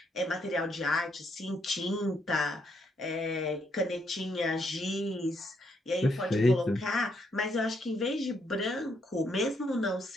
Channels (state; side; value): normal; both; correlation 0.75